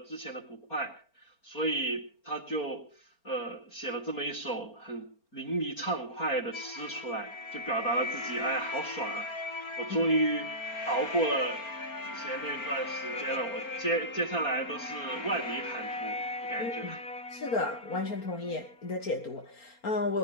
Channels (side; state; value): right; late; 4.4 ms